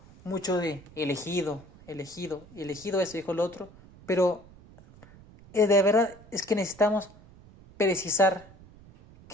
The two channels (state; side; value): noise; right; rumble, 23 dB below the sound